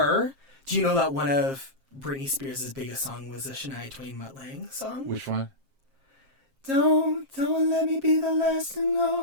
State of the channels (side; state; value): left; late; 7.5 ms